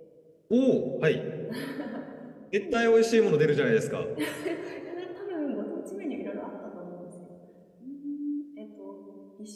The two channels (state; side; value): identical; both; correlation 1.00